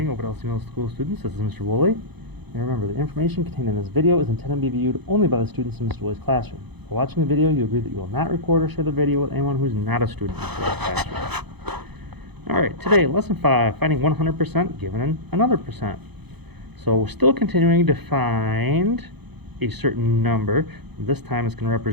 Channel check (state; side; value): late; left; 0.98 ms